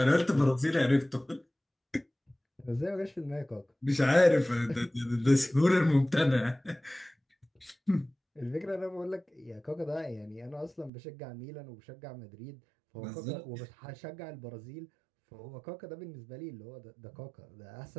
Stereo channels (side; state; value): left; drops out; at 10.9 s